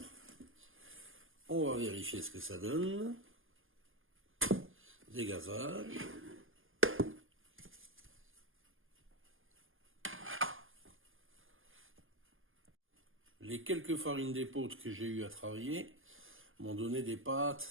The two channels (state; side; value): late; left; 0.59 ms